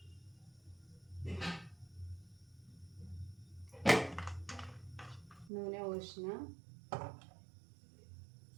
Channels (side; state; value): left; drops out; at 5.5 s